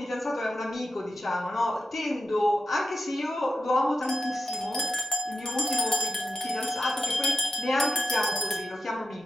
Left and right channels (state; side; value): normal; both; correlation 0.90